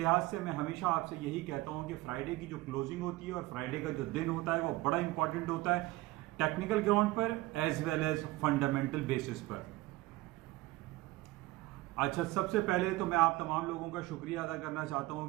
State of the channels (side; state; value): left; quieter; 19.5 dB